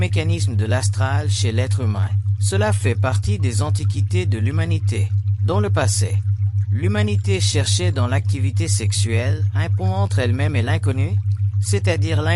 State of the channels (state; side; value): identical; both; correlation 1.00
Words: de l'astral chez l'être humain. Cela fait partie des antiquités de l'humanité. Dans le passé, l'humanité cherchait dans l'activité sexuelle un pont entre elle-même et l'inconnu, c'est-à-dire